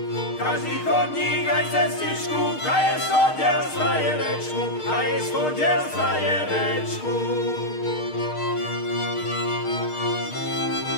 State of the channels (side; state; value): right; late; 6.5 ms